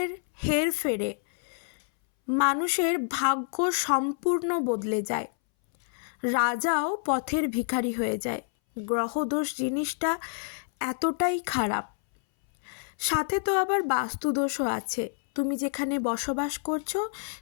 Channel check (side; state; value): right; silent; 59 dB below the other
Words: হেরফেরে মানুষের ভাগ্য সম্পূর্ণ বদলে যায়, রাজাও পথের ভিখারি হয়ে যায়। গ্রহদোষ জিনিসটা এতটাই খারাপ। সাথে তো আবার বাস্তুদোষও আছে। তুমি যেখানে বসবাস করছো